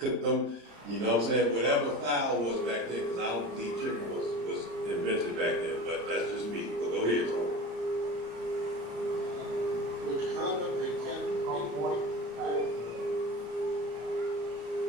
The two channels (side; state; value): left; late; 34 ms